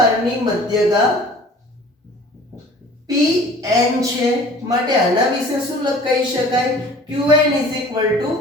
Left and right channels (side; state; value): both; normal; correlation 0.47